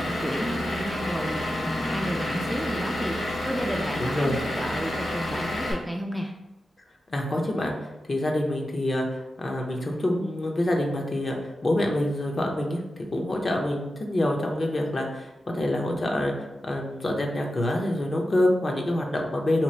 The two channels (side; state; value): both; normal; correlation 0.91